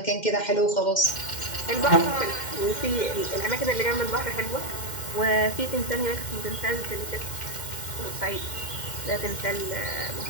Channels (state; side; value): late; right; 2.1 ms